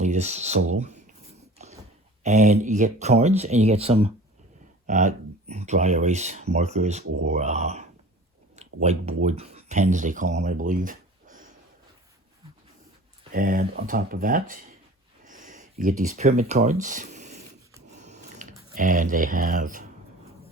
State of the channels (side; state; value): both; normal; correlation 0.42